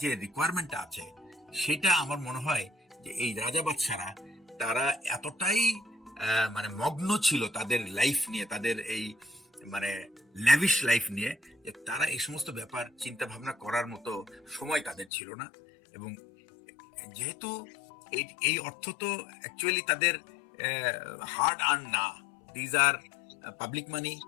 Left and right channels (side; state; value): right; drops out; at 15.1 s